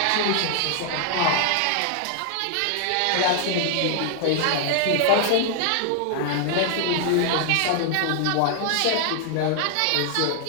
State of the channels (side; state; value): both; different; correlation 0.00